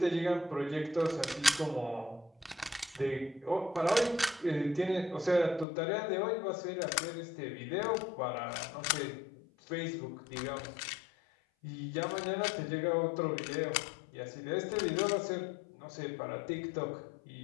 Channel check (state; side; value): drops out; right; at 5.7 s